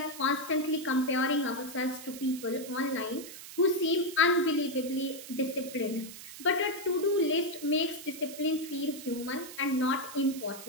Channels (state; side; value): noise; right; hiss, 13 dB below the sound